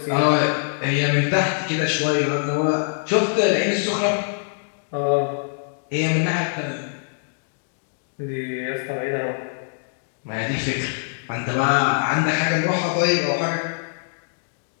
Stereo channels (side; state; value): right; silent; digital silence